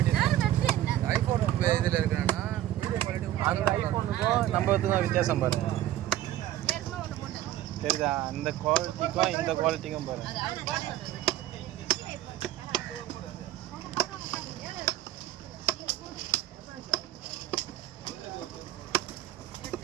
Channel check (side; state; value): left; quieter; 13.3 dB